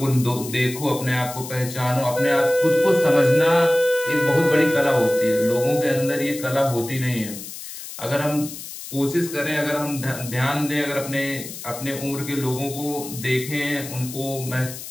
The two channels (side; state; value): left; noise; hiss, 11 dB below the sound